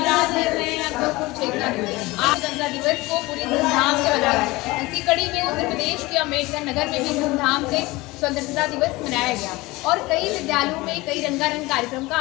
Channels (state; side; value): quieter; right; 21.2 dB